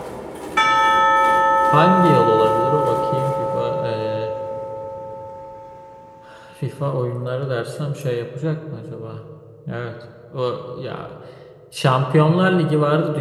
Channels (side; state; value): both; identical; correlation 1.00